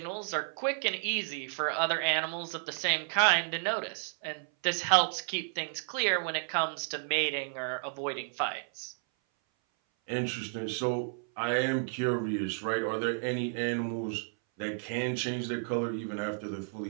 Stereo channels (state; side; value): silent; left; 56 dB below the other